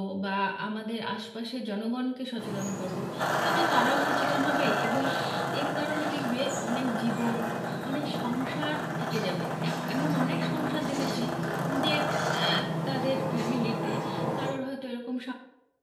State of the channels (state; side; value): identical; both; correlation 1.00